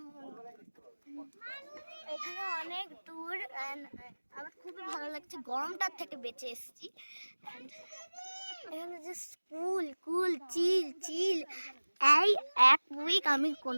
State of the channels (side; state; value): both; inverted; correlation -1.00